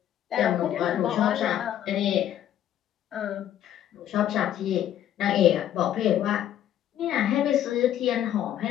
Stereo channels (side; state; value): right; quieter; 11.1 dB